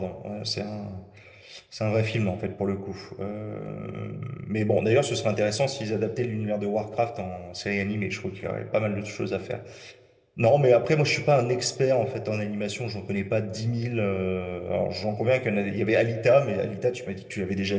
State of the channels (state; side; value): identical; both; correlation 1.00